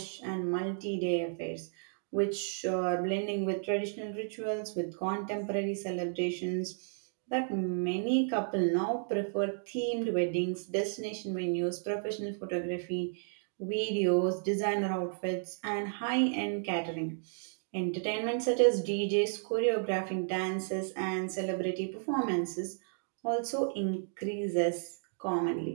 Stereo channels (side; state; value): left; silent; digital silence